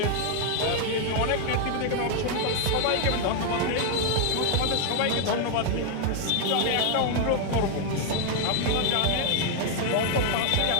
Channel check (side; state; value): both; different; correlation 0.00